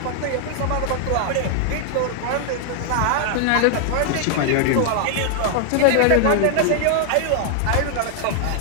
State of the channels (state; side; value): different; both; correlation 0.00